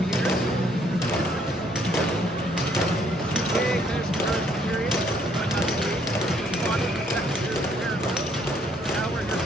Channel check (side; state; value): both; normal; correlation 0.67